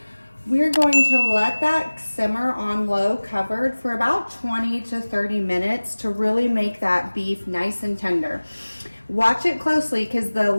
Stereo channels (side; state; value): both; inverted; correlation -1.00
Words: We're going to let that simmer on low covered for about 20 to 30 minutes to really make that beef nice and tender. Watch it closely because the